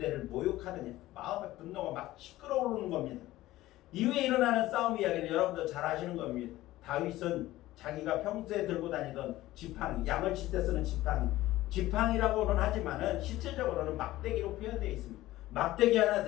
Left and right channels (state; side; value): quieter; right; 16.3 dB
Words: 모욕하느냐. 마음의 분노가 막 시끄러오르는 겁니다. 이후에 일어나는 싸움 이야기는 여러분도 잘 아시는 겁니다. 다윗은 자기가 평소에 들고 다니던 지팡이, 양을 칠 때 쓰는 지팡이라고는 하지만은 실질적으로는 막대기로 표현되어 있습니다. 막대기 하나